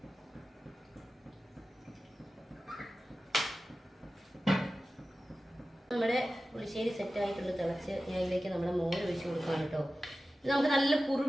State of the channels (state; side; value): normal; both; correlation 0.95